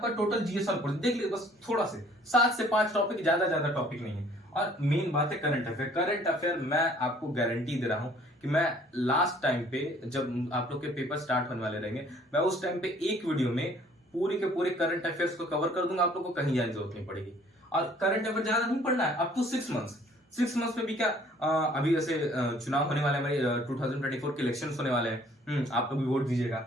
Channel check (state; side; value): normal; both; correlation 0.57